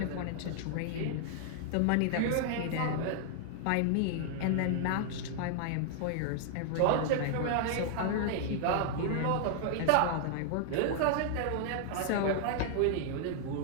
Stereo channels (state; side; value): different; both; correlation -0.01